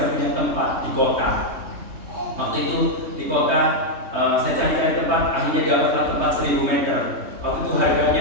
punya tempat di kota. Waktu itu di kota saya cari tempat, akhirnya dapatlah tempat 1000 meter. Waktu itu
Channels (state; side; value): late; left; 3.2 ms